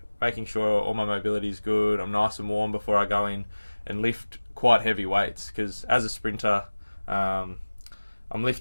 making sure all my mobility is good, I'm nice and warm before I go in and lift quite heavy weights, because as a sprinter, I'm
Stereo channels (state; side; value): inverted; both; correlation -1.00